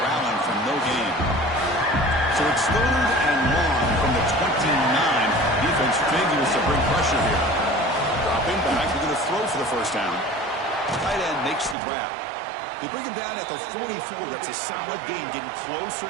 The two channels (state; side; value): drops out; left; at 11.8 s